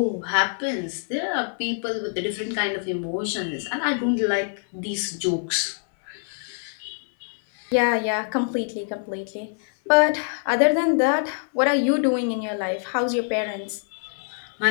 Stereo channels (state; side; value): silent; right; 62 dB below the other